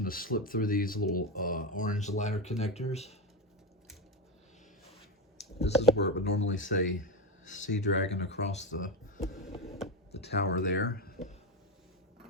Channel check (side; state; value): both; normal; correlation 0.14